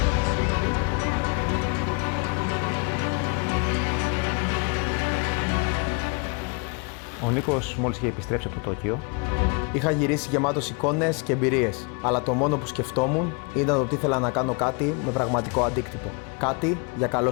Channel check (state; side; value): quieter; right; 33.6 dB